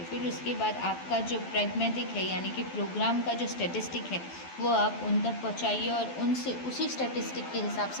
फिर उसके बाद आपका जो प्रैग्मेटिक है, यानी कि प्रोग्राम का जो स्टैटिस्टिक है, वो आप उन तक पहुँचाइए और उनसे उसी स्टैटिस्टिक के हिसाब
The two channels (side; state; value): right; late; 12 ms